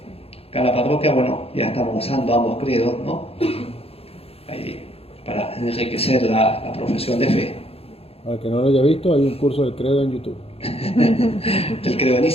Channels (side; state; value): right; late; 0.28 ms